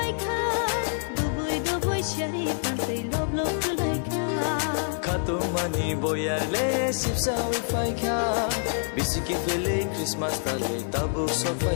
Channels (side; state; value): right; silent; digital silence